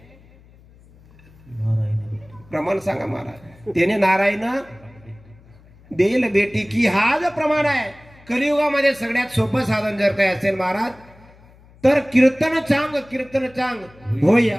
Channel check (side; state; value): left; noise; hum, 26 dB below the sound